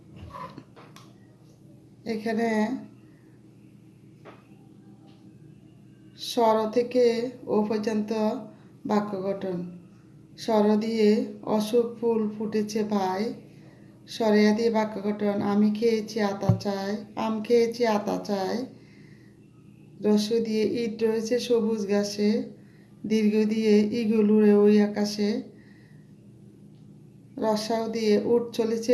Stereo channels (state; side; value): identical; both; correlation 1.00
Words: এখানে স্বর থেকে ও পর্যন্ত বাক্য গঠন। স্বর দিয়ে অশোক ফুল ফুটেছে ভাই, স্বরেয়া দিয়ে বাক্য গঠন। আমি খেয়েছি আতা চাই, আম খেয়েছি আতা চাই। রস্য দিয়ে ইট রয়েছে সবুজ ঘাসে, দীর্ঘ দিয়ে ইগল উড়ে ওই আকাশে। রসাও দিয়ে উট